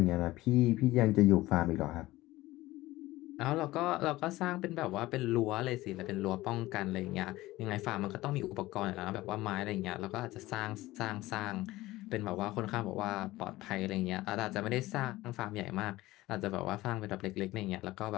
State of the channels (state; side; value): quieter; right; 17.9 dB